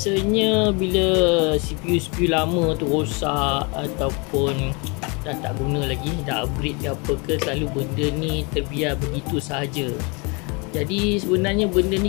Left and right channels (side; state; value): right; quieter; 30.8 dB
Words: bila CPU lama tu rosak ataupun dah tak guna lagi, dah upgrade ke apa ke, selalu benda ni terbiar begitu sahaja. Jadi sebenarnya benda